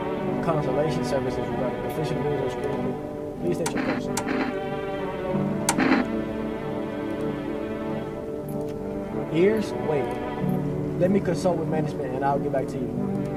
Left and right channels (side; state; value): both; identical; correlation 1.00